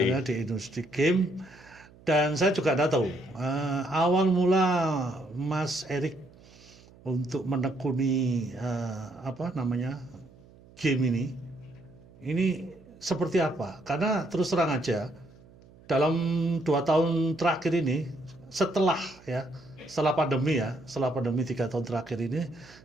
Khususnya di industri game. Dan saya juga tidak tahu awal mula Mas Erik untuk menekuni game ini seperti apa? Karena terus terang aja dalam 2 tahun terakhir ini, setelah pandemi 3 tahun terakhir ini,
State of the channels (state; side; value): noise; right; hum, 24 dB below the sound